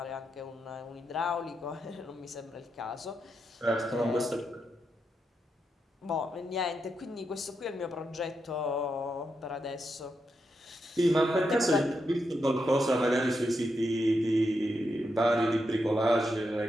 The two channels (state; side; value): normal; both; correlation 0.84